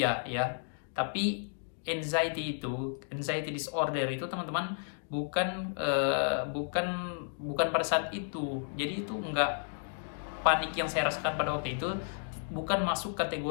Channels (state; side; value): silent; right; digital silence